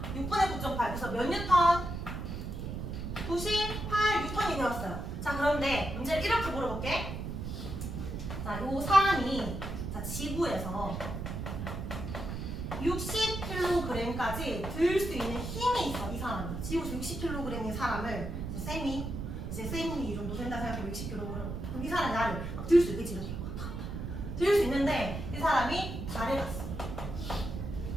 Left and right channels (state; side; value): noise; right; rumble, 5 dB below the sound